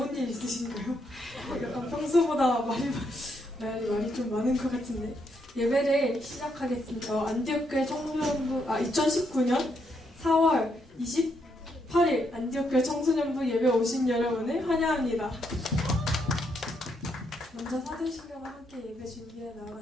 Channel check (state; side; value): normal; both; correlation 0.77